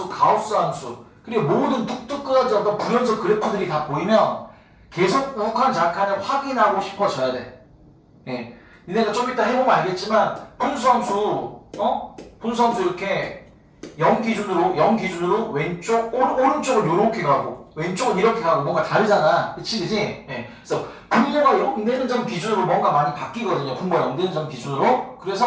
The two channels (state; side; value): identical; both; correlation 1.00